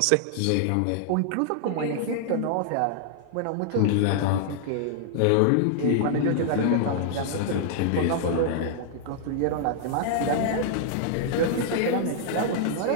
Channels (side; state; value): both; different; correlation -0.01